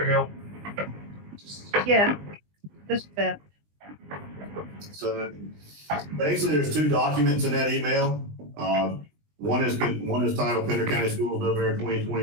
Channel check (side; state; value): left; late; 20 ms